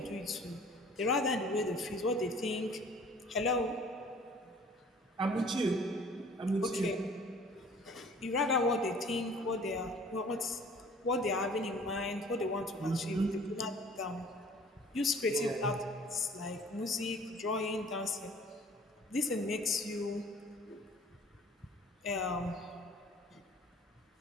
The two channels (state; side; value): normal; both; correlation 0.51